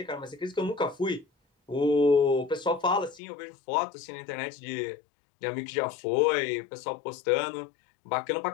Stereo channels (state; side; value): drops out; right; at 3.2 s